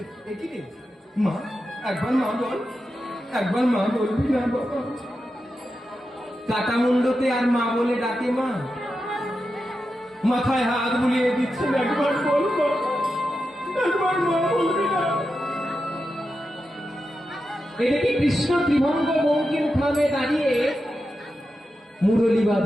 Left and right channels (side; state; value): both; normal; correlation 0.89